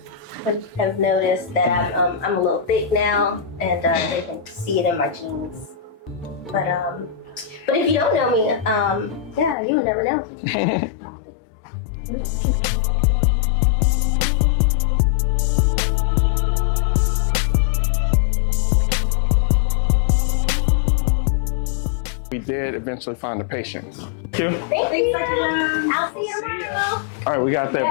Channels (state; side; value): drops out; right; at 9.6 s